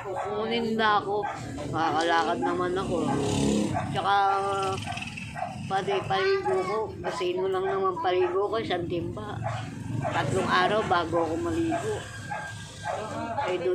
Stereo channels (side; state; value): both; identical; correlation 1.00